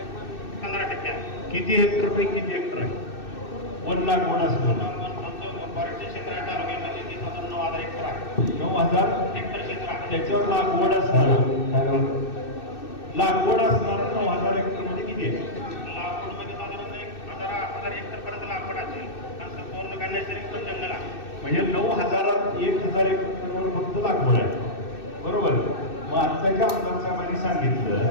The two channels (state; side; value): late; right; 2.6 ms